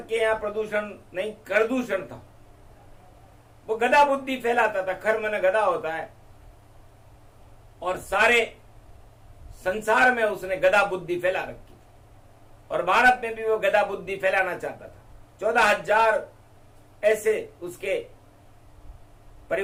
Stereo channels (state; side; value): identical; both; correlation 1.00